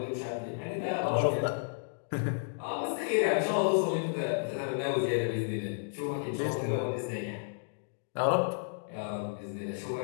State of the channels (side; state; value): right; silent; digital silence